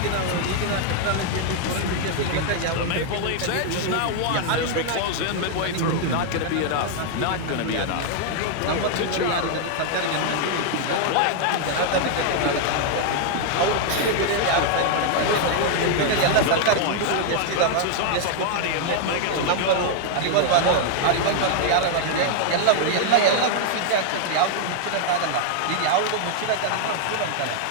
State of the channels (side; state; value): both; different; correlation 0.00